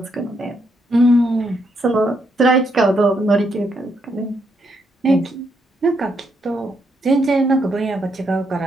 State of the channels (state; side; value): normal; both; correlation 0.77